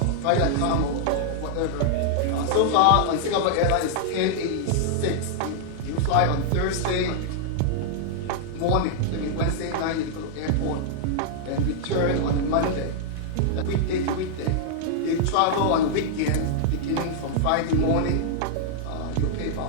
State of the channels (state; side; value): different; both; correlation -0.01